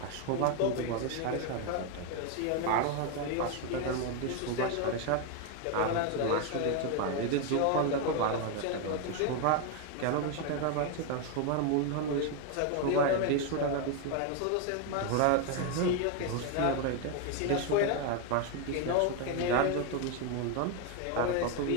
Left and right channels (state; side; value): different; both; correlation 0.01